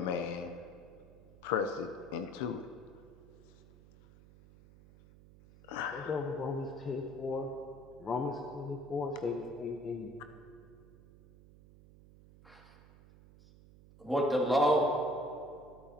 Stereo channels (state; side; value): noise; right; hum, 22 dB below the sound